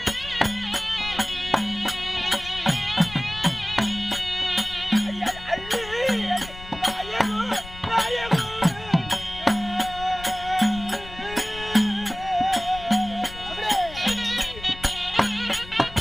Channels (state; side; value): noise; left; rumble, 15 dB below the sound